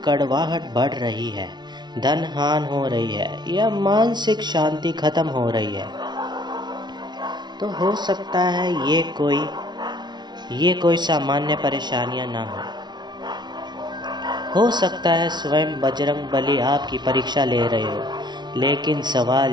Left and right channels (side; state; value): left; late; 0.20 ms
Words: कड़वाहट बढ़ रही है, धन हानि हो रही है या मानसिक शांति खत्म हो रही है, तो हो सकता है ये कोई सामान्य परेशानियां ना हो सकता है स्वयं बजरंग बली आपकी परीक्षा ले रहे हो। लेकिन सवाल